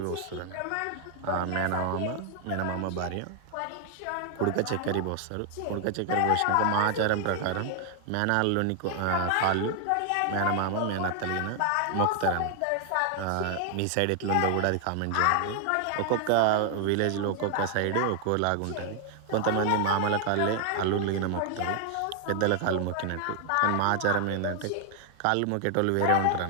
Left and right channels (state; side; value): different; both; correlation 0.00